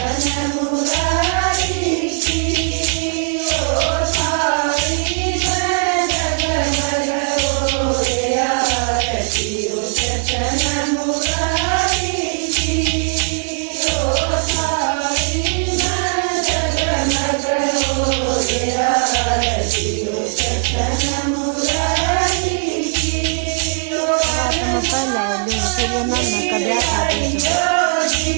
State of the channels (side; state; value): left; silent; 59 dB below the other